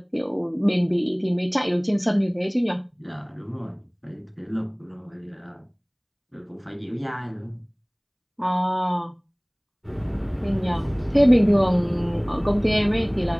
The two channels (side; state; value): both; identical; correlation 1.00